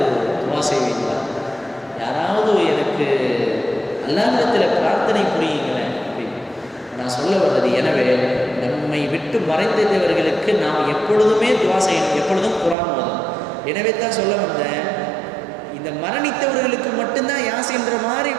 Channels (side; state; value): left; drops out; at 12.8 s